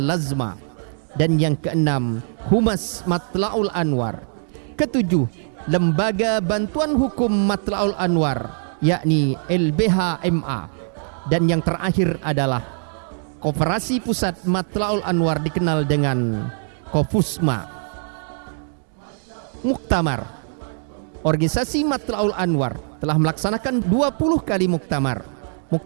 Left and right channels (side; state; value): left; silent; 64 dB below the other